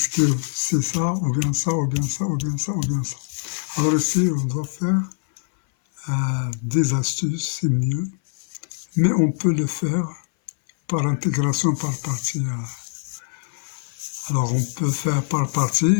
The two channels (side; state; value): right; silent; 60 dB below the other